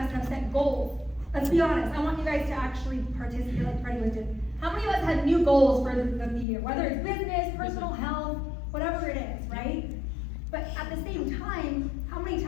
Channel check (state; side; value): drops out; right; at 6.5 s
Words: have set goals? Let's be honest, I want you guys to actually participate like Freddie was doing. How many of us have new goals for the year? Whether it's business, personal health, whatever it is, right? But at the same time, how many